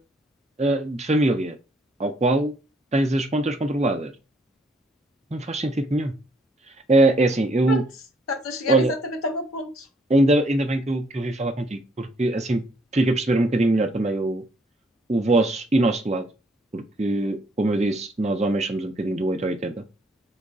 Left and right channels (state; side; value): normal; both; correlation 0.67